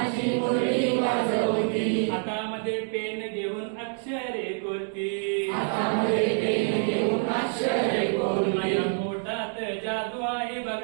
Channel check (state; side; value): silent; left; 60 dB below the other